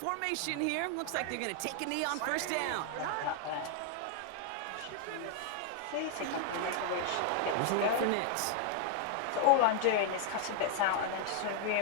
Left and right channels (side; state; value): both; different; correlation 0.00